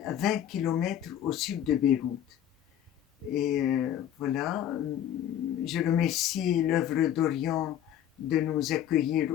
à 20 kilomètres au sud de Beyrouth. Et voilà, je remercie l'œuvre d'Orient de nous accueillir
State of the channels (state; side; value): quieter; right; 10.5 dB